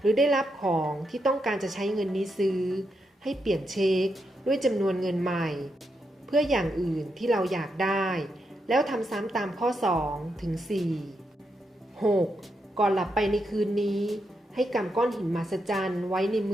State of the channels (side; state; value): both; normal; correlation 0.83